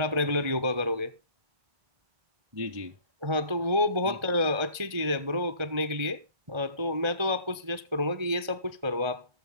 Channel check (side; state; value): left; late; 1.4 ms